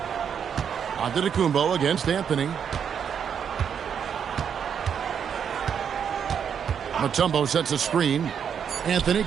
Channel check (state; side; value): quieter; left; 7.7 dB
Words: Antetokounmpo against Anthony. Mutombo sets a screen. Anthony